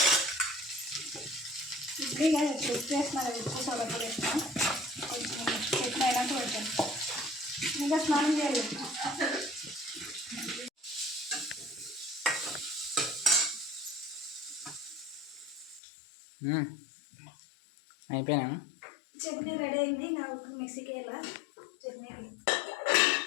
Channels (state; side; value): drops out; right; at 15.8 s